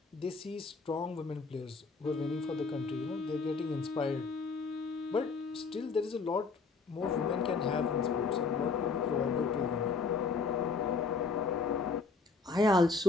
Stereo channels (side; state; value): right; quieter; 4.3 dB